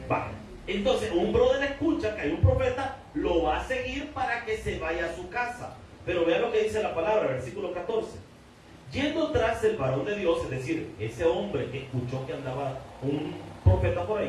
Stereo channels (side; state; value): both; identical; correlation 1.00